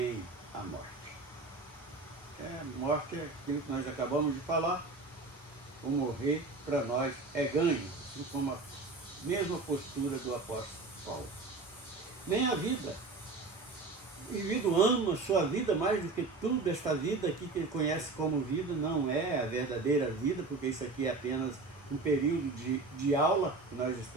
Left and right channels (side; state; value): left; quieter; 3.7 dB